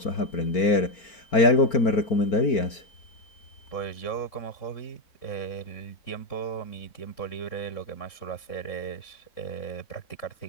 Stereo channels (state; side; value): late; right; 4.4 ms